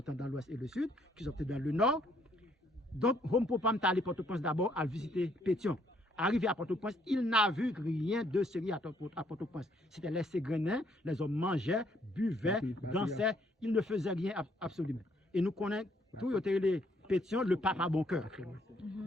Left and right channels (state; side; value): normal; both; correlation 0.68